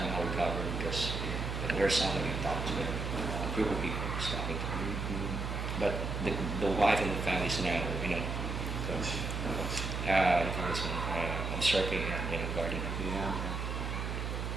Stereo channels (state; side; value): noise; right; hum, 3 dB below the sound